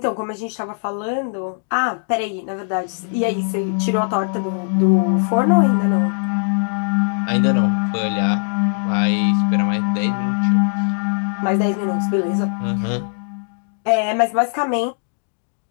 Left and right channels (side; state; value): right; silent; digital silence